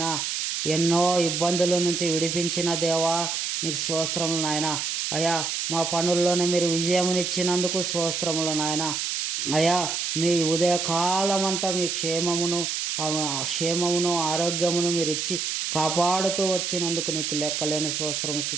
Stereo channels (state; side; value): noise; right; hiss, 1 dB below the sound